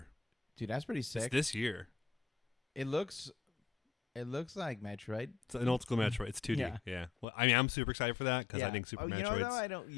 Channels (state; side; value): drops out; right; at 7.2 s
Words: Dude, that's pretty It's sick. this year. It looks like Metroid. It's an old school Metroid. It's 2D. Yeah. Well, I mean, I'm super excited for that because I think Super you Metroid's... know though,